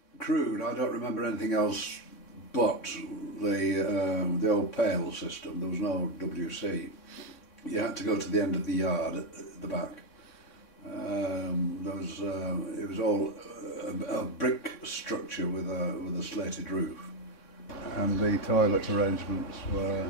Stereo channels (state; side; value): late; right; 3.6 ms